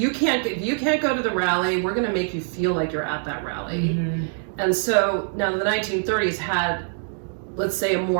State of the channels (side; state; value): left; silent; digital silence